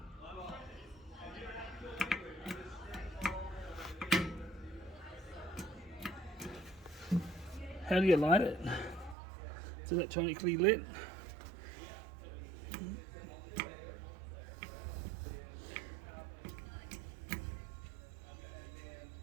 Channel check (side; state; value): left; drops out; at 9.2 s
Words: How do you light it? It's electronically lit.